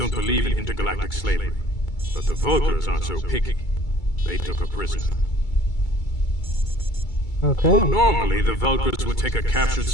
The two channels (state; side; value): late; right; 2.3 ms